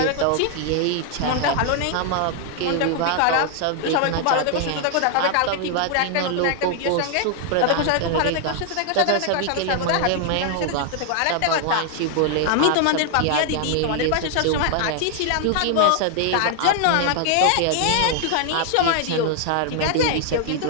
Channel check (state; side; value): different; both; correlation 0.00